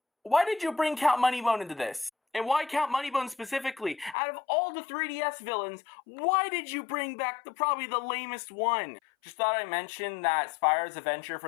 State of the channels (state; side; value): drops out; right; at 4.2 s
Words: why did you bring Count Moneybone into this? And why Count Moneybone specifically? Out of all the 3DS villains, why did you bring back probably the lamest one? Just thought I'd mention that Spyro's Adventure